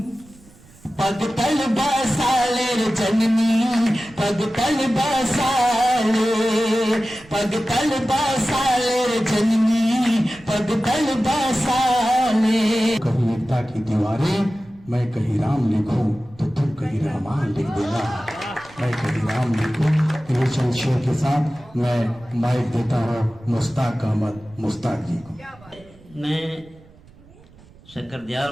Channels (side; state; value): right; noise; rumble, 25 dB below the sound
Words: पग तल बसाले रे जननी पग तल बसाले, पग तल बसाले रे जननी पग तल बसाले। कहीं एकता की दीवारें मैं कहीं राम लिखूं तो तुम कहीं रहमान लिख देना, मैं कहीं राम लिखूं। ये चंद शेर के साथ मैं माइक देता हूँ मुश्ताक अहमद मुश्ताक जी को। मैं शक्कर